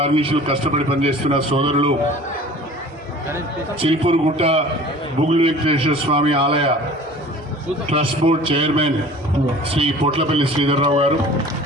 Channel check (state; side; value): normal; both; correlation 0.44